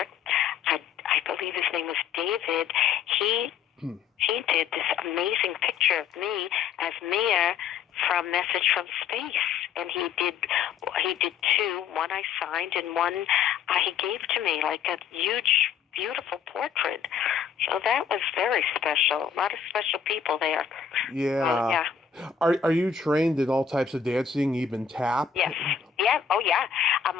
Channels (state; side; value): quieter; right; 7.2 dB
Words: I believe his name was David, he did this amazing picture of me as Meia from Message from Space. And he did two. One I signed and one he gave to me, like a huge, beautiful portrait. So that was very special. A lot of special people there. Yeah. Yeah. Are you trained in all types of dancing, even tap? Yes. Yeah. Oh, yeah.